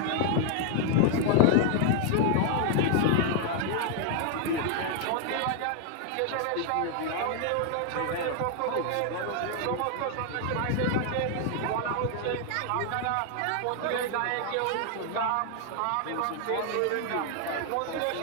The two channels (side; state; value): both; different; correlation 0.00